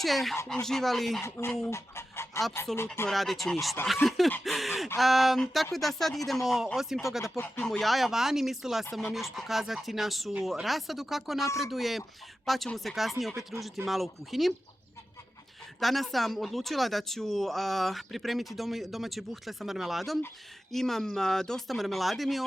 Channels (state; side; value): normal; both; correlation 0.93